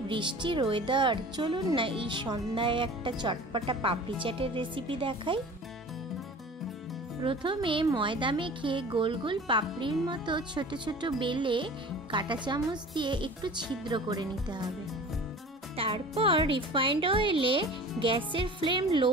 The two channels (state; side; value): normal; both; correlation 0.41